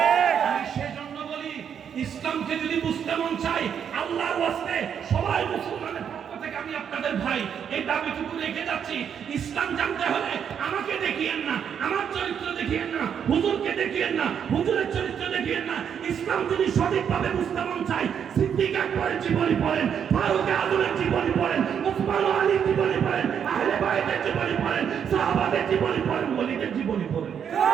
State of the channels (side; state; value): left; quieter; 8.0 dB